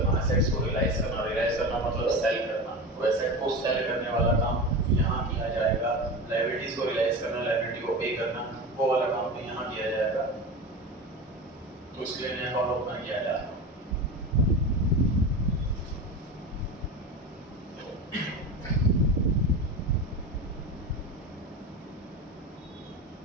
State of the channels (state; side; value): normal; both; correlation 0.26